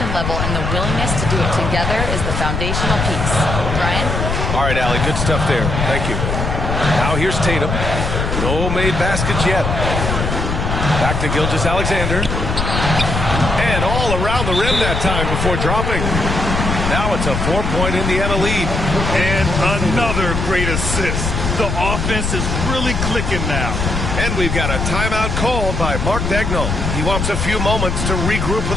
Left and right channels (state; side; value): noise; left; rumble, 2 dB below the sound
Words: level and the willingness to do it together is the foundational piece. Brian? All right, Allie, good stuff there. Thank you. Now here's Tatum. No made baskets yet. Back to Gilgeous-Alexander. And all around the rim that time before dropping. Now it's a 4-point Indiana lead. And another great assist. The offense is really clicking now. And we've got a timeout called by Mark Dagnall. He wants a few moments to regroup